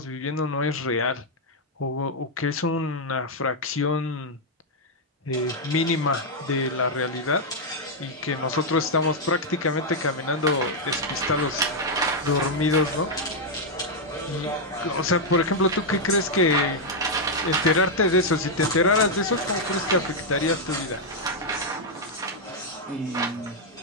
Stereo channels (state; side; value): normal; both; correlation -0.02